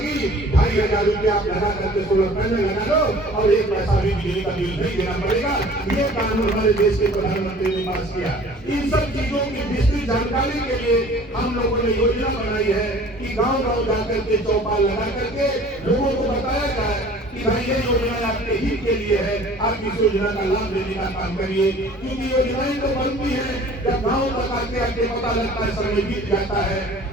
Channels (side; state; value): both; normal; correlation 0.48